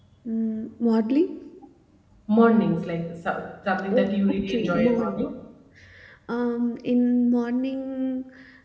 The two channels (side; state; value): both; identical; correlation 1.00